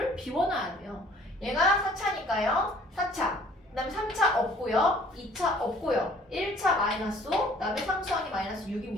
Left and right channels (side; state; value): both; normal; correlation 0.55